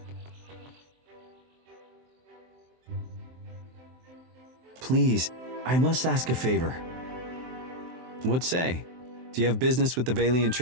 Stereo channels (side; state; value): left; late; 23 ms